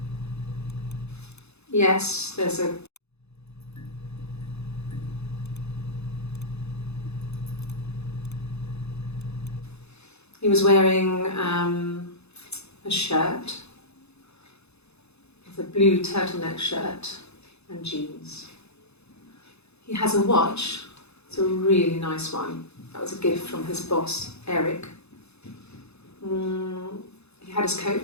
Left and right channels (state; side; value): late; right; 0.80 ms